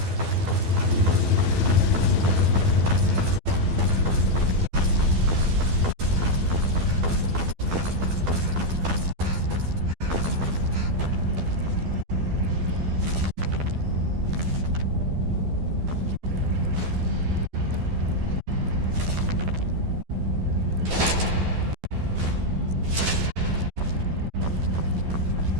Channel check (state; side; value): late; left; 12 ms